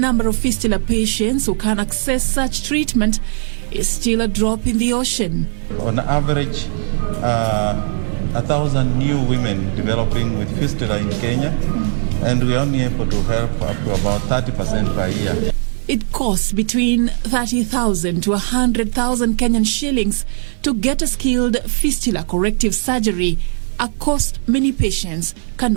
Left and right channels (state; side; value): silent; left; 59 dB below the other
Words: of fistula patients who can access such treatment is still a drop in the ocean. On average, 1,000 new women developing with fistula in Kenya, and we're only able to help up to about 30% per year. It costs between 30,000 to 100,000 Kenyan shillings to get a skilled fistula corrective surgery, a cost many patients